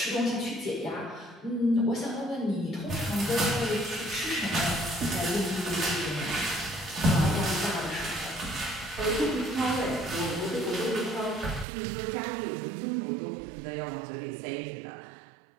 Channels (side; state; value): left; drops out; at 11.7 s